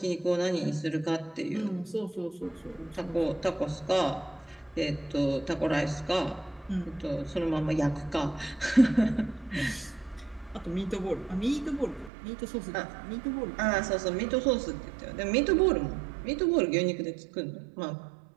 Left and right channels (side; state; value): left; drops out; at 12.1 s